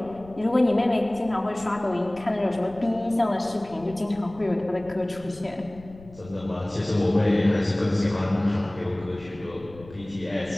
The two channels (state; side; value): noise; left; rumble, 20 dB below the sound